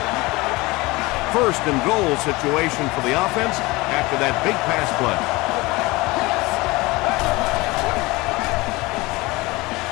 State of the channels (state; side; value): quieter; right; 22.3 dB